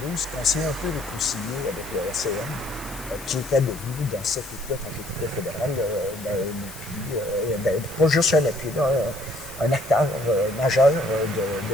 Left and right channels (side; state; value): left; noise; hiss, 16 dB below the sound